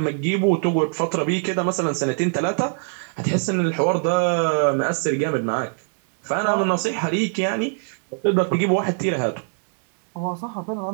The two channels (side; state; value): left; silent; digital silence